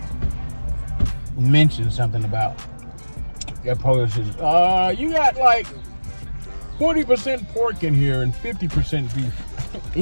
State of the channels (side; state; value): both; inverted; correlation -1.00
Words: mentioned something about their Polishes. You got like 40% pork in here and 50% beef.